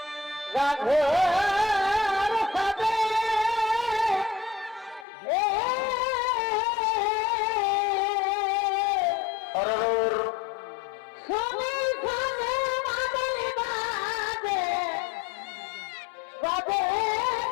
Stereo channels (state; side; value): drops out; right; at 5.1 s